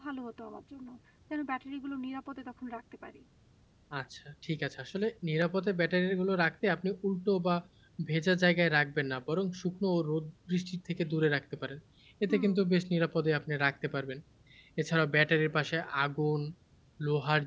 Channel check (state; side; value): identical; both; correlation 1.00